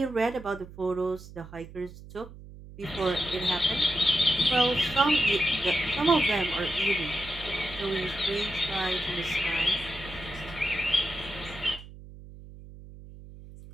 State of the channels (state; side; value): noise; right; hum, 16 dB below the sound